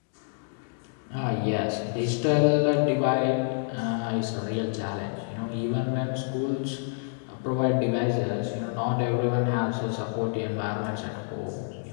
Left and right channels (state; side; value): silent; right; digital silence